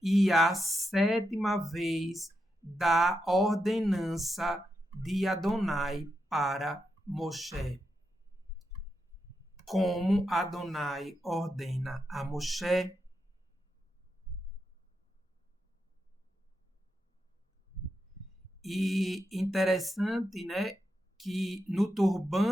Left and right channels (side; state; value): both; normal; correlation 0.85